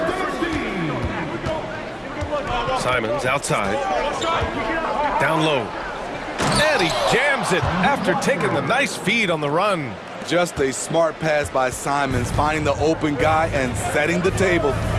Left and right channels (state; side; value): identical; both; correlation 1.00